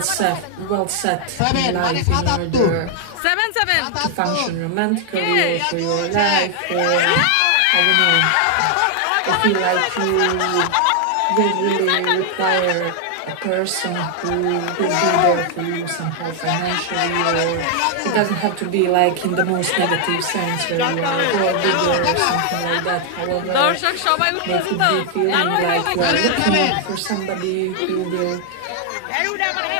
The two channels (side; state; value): both; different; correlation 0.00